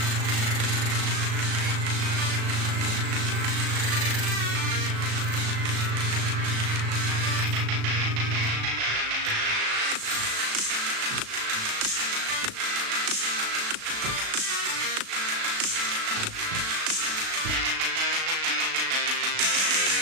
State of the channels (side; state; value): left; late; 36 ms